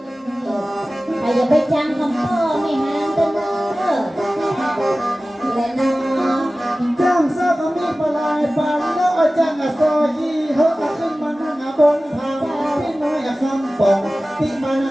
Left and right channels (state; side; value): normal; both; correlation 0.97